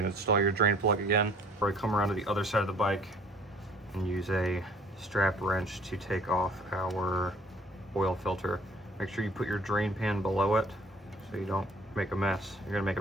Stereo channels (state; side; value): normal; both; correlation 0.54